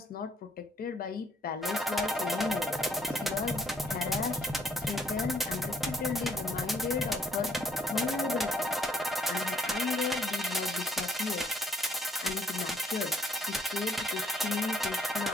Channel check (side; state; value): both; normal; correlation 0.64